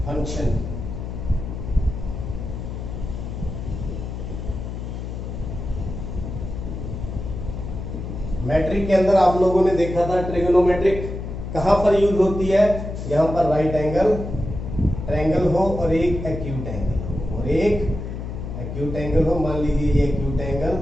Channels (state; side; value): noise; left; hum, 7 dB below the sound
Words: फंक्शन, मैट्रिक के अंदर आप लोगों ने देखा था ट्रिग्नोमेट्रिक कहां पर यूज होती है। यहां पर राइट एंगल ट्रायंगल हो और एक एक्यूट एंगल हो, मान लीजिए ये acute angle